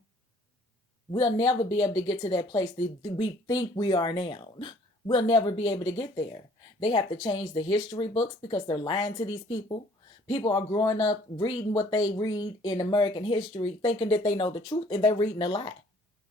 we'll never be able to get to that place that we think we are now. We'll never be able to get there. They have to change the history books because they're lying to these people. People are growing up reading what they read in American history, thinking that they know the truth, and they're reading a lie.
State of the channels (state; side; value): normal; both; correlation 0.57